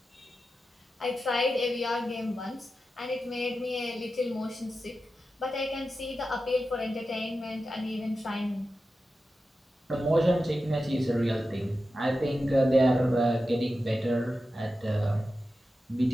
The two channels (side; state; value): both; normal; correlation 0.92